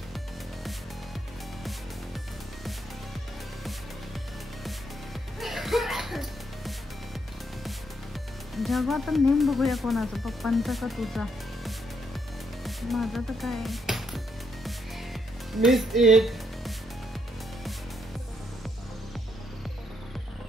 जागो आता नेम बघूया कोणाचा, पप्पांचा का तुझा. माझा तर काय मिस इट.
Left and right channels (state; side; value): normal; both; correlation 0.75